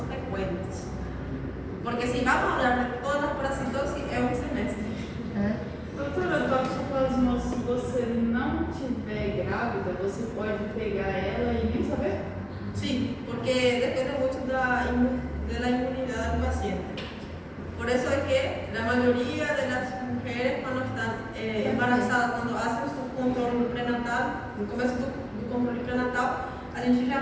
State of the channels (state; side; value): identical; both; correlation 1.00